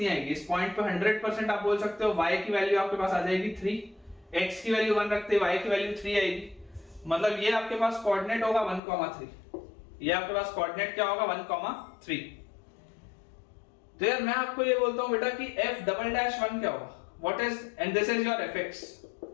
आएगी, इस पॉइंट पे 100% आप बोल सकते हो y की वैल्यू आपके पास आ जाएगी 3, x की वैल्यू 1 रखते y की वैल्यू 3 आएगी, मतलब ये आपके पास कोऑर्डिनेट होगा 1,3, ये आपके पास कोऑर्डिनेट क्या होगा 1,3। तो यार मैं आपको ये बोलता हूं बेटा कि f डबल डैश 1 क्या होगा, what is, and this is your fx,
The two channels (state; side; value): drops out; right; at 8.8 s